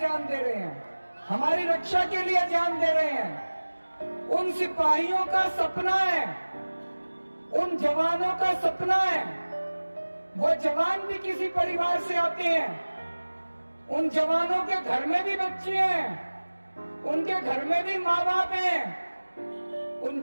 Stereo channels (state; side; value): inverted; both; correlation -1.00